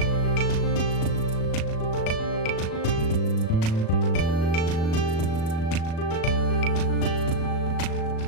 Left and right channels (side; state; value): right; late; 37 ms